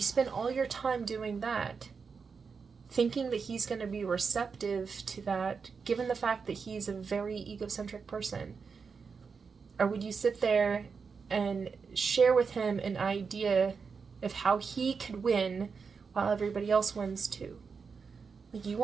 spend all your time doing that, thinking that he's going to be receptive to that, given the fact that he's a very egocentric person? Or would you sit there and share with him an idea of how he could win while everybody else wins too? Like, you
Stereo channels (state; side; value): quieter; left; 5.4 dB